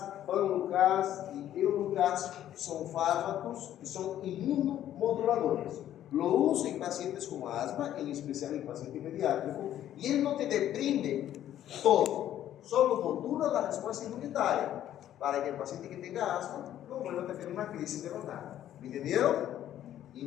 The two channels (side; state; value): right; quieter; 11.7 dB